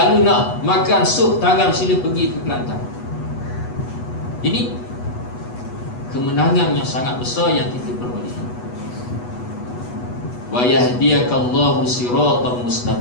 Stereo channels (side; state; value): right; late; 8.2 ms